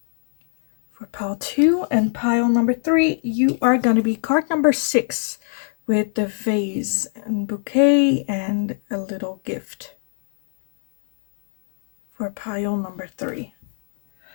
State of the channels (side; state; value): right; silent; digital silence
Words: For pile 2 and pile number 3, you are going to be card number 6 with the vase and bouquet and a little gift. For pile number 3.